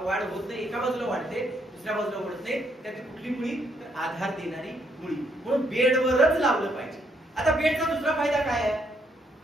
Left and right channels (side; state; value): both; normal; correlation 0.73